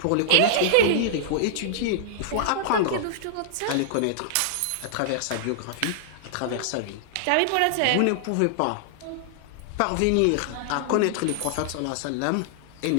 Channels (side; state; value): both; different; correlation -0.01